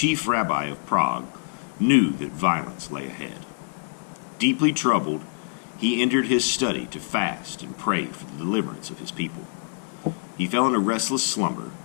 rabbi of Prague, knew that violence lay ahead. Deeply troubled, he entered his study to fast and pray for the deliverance of his people. He fell in a restless slumber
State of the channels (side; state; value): right; silent; digital silence